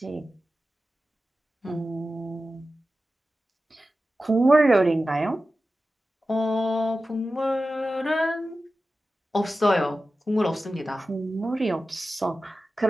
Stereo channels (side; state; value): both; normal; correlation 0.94